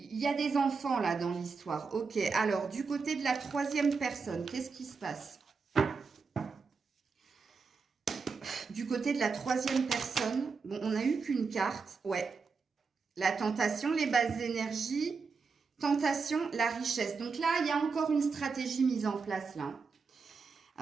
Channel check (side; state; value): left; quieter; 5.0 dB